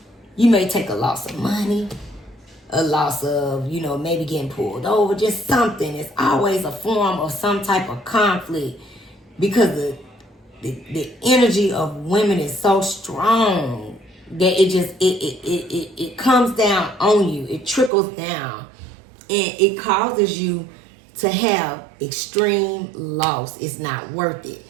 you may take a loss of money, a loss of, you know, maybe getting pulled over, just something. It's always a form of some type of conflict because the energy of women is so strong that it comes down on you. It trickles down and it causes you to have extreme loss. It's not worth it.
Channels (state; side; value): drops out; left; at 17.9 s